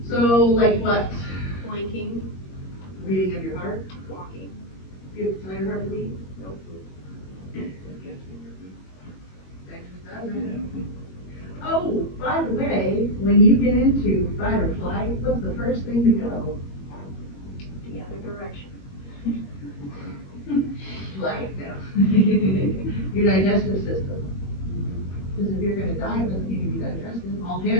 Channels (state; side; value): late; right; 21 ms